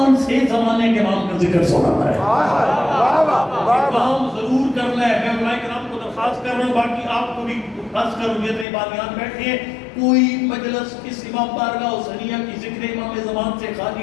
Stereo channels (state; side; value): drops out; right; at 8.7 s